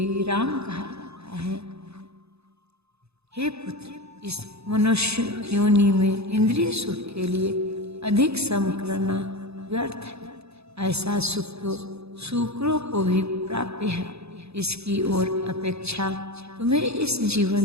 राम कहा जाता है। हे पुत्र, इस मनुष्य योनि में इंद्रिय सुख के लिए अधिक श्रम करना व्यर्थ है। ऐसा सुख तो शूकरों को भी प्राप्य है। इसकी ओर अपेक्षा तुम्हें इस जीवन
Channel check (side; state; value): left; late; 0.79 ms